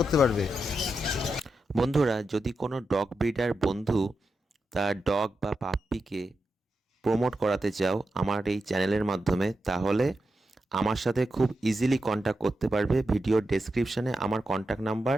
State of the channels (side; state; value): both; normal; correlation 0.88